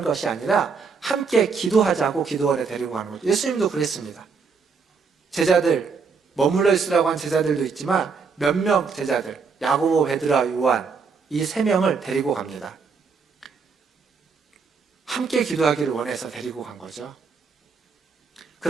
것이 아니라 함께 기도하자고 기도원에 데리고 가는 거죠. 예수님도 그랬습니다. 제자들, 머물러 있으라고 한 제자들도 있지만 몇 명 제자들, 야고보, 베드로와 요한 이 3명을 데리고 갑니다. 함께 기도하기를 원해서 데리고 간 거죠.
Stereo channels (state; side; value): quieter; left; 5.2 dB